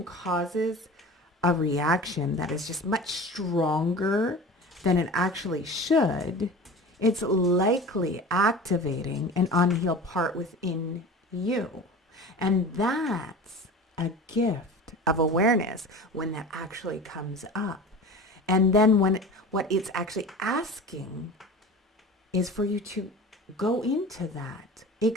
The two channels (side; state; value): both; normal; correlation 0.36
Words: causes a reaction that is just much stronger than it actually should, it's likely activating an unhealed part within you. And that's a gift of awareness when that actually comes up. And then what it's actually asking is for you to go into that,